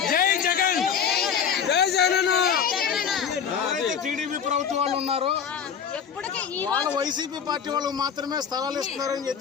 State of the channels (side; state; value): right; quieter; 7.4 dB